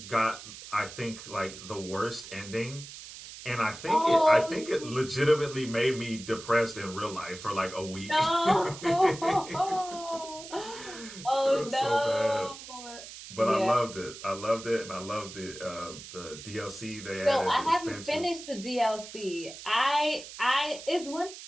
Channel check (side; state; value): right; noise; hiss, 14 dB below the sound